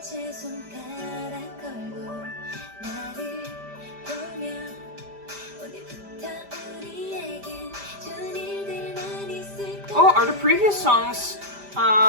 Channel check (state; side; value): late; left; 5.0 ms